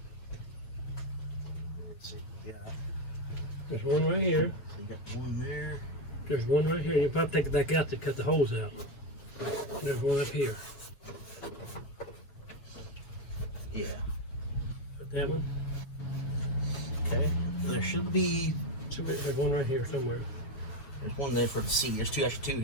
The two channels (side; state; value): right; late; 7.2 ms